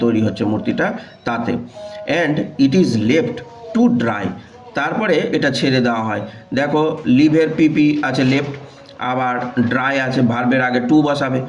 তৈরি হচ্ছে মূর্তিটা তাতে। And it is left to dry, তারপরে এটা ছেড়ে দেওয়া হয়। দেখো লিভের পিপি আছে লেফট, আবার ড্রাই আছে, ভার্বের আগে টু বসাবে,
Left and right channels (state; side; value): identical; both; correlation 1.00